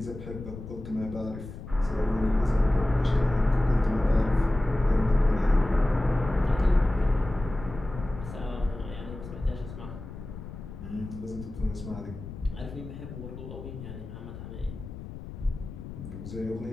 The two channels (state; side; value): noise; left; rumble, 11 dB below the sound